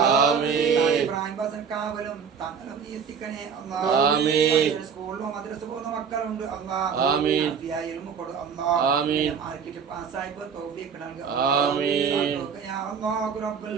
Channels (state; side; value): quieter; left; 6.6 dB